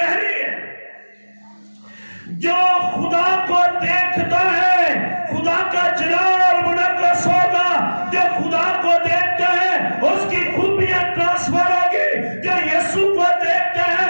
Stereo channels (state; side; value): inverted; both; correlation -1.00